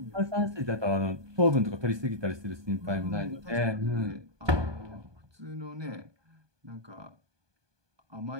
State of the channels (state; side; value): late; left; 1.2 ms